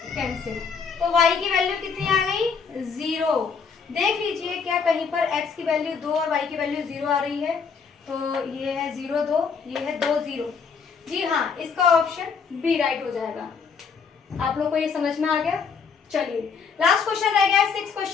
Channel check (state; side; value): quieter; right; 5.9 dB